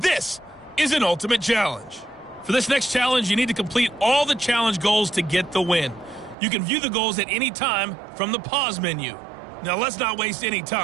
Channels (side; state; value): left; drops out; at 6.4 s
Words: this is an ultimate challenge. For this next challenge, you need to complete all the challenge goals to get the win. You can view the goals at any time from the pause menu. Now let's not waste any